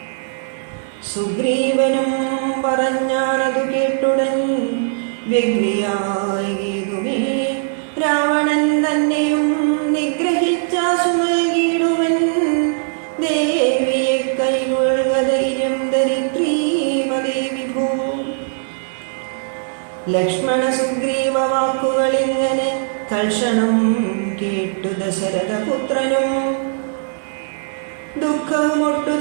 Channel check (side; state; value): left; silent; digital silence